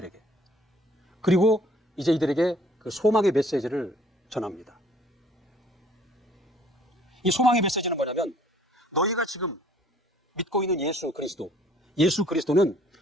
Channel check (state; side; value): normal; both; correlation 0.57